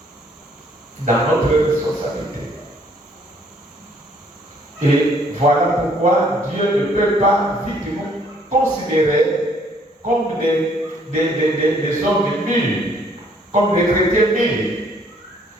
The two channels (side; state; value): both; normal; correlation 0.63